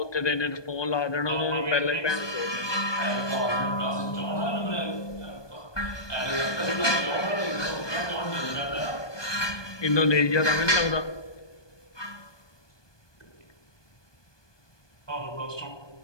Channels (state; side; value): late; right; 1.2 ms